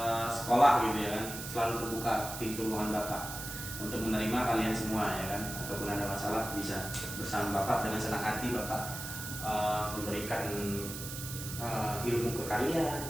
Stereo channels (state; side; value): noise; right; hiss, 8 dB below the sound